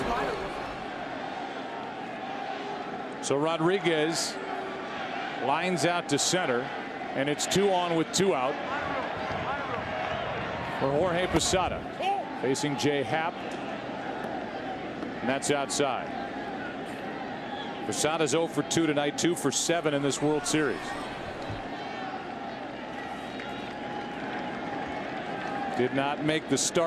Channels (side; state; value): both; identical; correlation 1.00